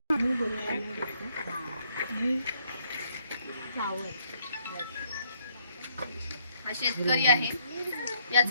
हा शेतकरी आहे.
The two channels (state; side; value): inverted; both; correlation -0.69